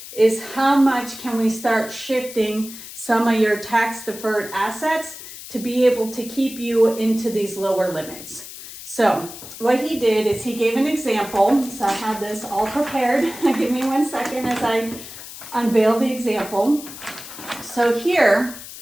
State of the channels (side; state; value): left; noise; hiss, 13 dB below the sound